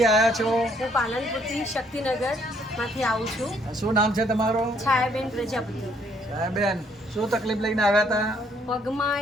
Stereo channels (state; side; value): normal; both; correlation 0.67